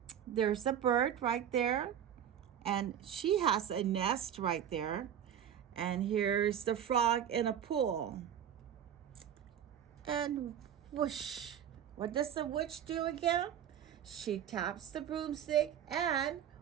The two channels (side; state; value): left; quieter; 9.5 dB